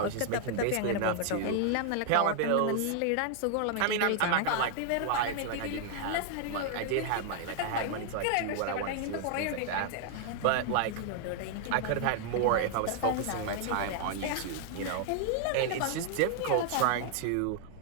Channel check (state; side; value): different; both; correlation 0.00